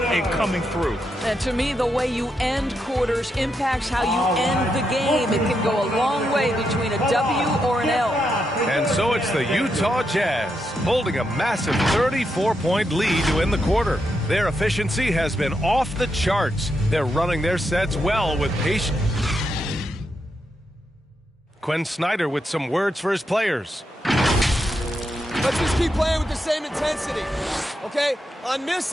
coming through. And to me, the way you end quarters impacts how you end the game. It can go a long way between a W or an L. And so it's the Utah Jazz holding a massive 34-point lead to end the quarter. Their efficiency has been off the charts. They're running their sets well with patience. Quinn Snyder with some words for his players. Let's just keep playing with the same intensity, okay? On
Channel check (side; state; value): both; normal; correlation 0.83